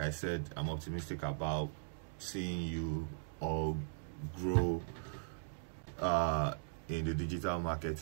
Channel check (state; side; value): silent; left; digital silence